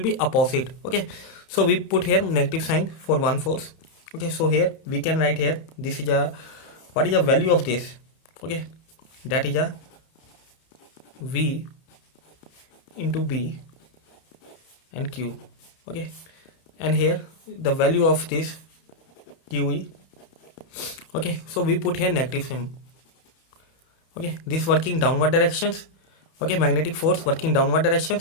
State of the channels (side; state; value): right; late; 31 ms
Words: be opposite. Okay, so we put here negative sign for one force. Okay, so here we can write here, this is a, what is the value of this? Okay, that is a V into B and Q. Okay, and here the value of this QE. Okay, so we put here negative symbol. Okay, this working downward directions. Okay, magnetic force working downward